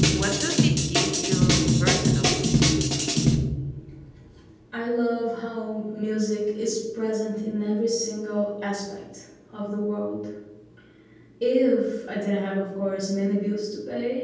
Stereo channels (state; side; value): identical; both; correlation 1.00